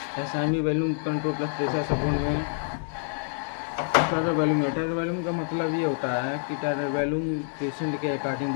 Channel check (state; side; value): silent; right; digital silence